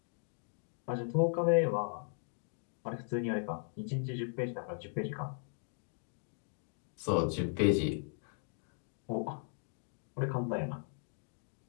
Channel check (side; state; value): right; silent; 53 dB below the other